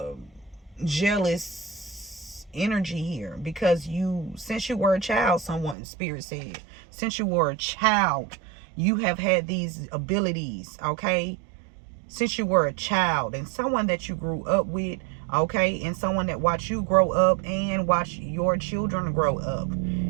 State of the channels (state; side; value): drops out; left; at 5.8 s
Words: jealous energy here, because since you were a child, someone spirit said, since you were a child, you have had these abilities. Okay, since you were a child, and someone that you grew up with. Okay, and someone that watched you grow up and watch your children grow up